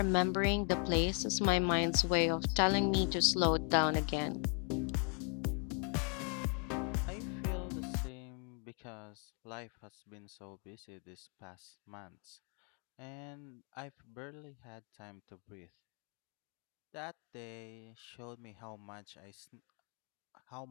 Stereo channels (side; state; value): right; quieter; 39.8 dB